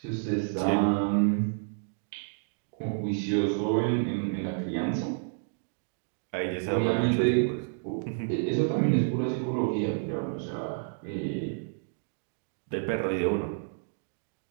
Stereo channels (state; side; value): silent; left; digital silence